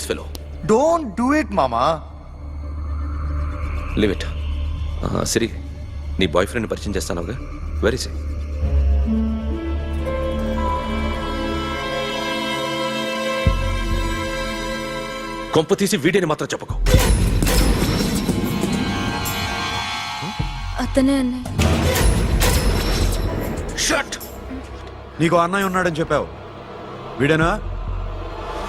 fellow. Don't do it, mama. Leave it. సిరి, నీ బాయ్ ఫ్రెండ్ పరిచయం చేస్తానుగా. Very సే. కొంప తీసి వీడిని మాత్రం చెప్పకు. అతనే అన్నయ్య. Shut. నీకు అన్నయ్య ఉన్నాడని చెప్పావు, వీడేనా?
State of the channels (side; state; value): both; identical; correlation 1.00